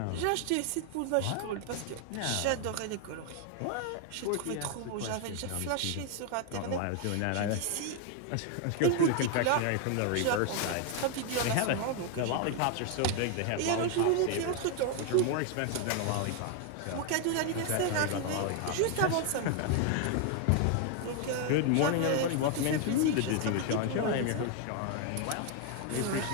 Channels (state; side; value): different; both; correlation 0.00